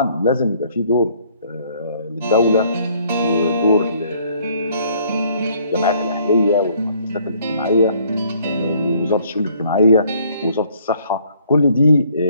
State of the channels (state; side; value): inverted; both; correlation -0.62